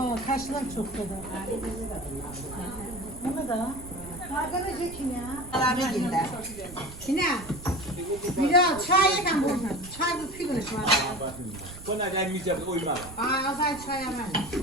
kaşlar çok da. Bunu da. Arkadaş için ya. Abi gider. Yine. Bir daha çay yakan bunu. Çay bu pigülüş var. Buna gelmeyeceğim uyma. Azay çay yaman.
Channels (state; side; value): noise; right; rumble, 15 dB below the sound